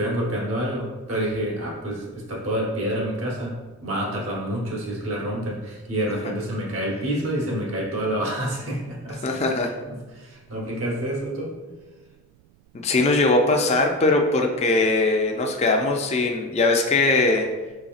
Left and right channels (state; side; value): noise; right; rumble, 30 dB below the sound